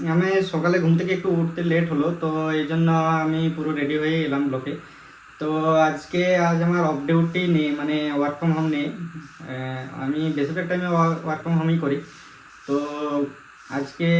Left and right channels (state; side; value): identical; both; correlation 1.00